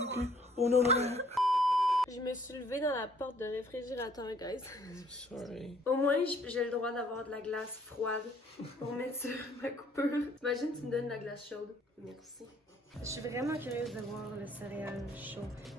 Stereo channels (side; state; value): both; normal; correlation 0.61